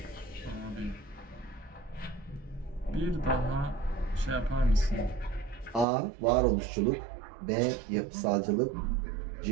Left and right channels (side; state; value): left; drops out; at 5.9 s